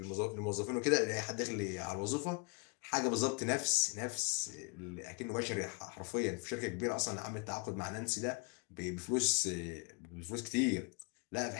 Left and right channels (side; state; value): right; quieter; 34.0 dB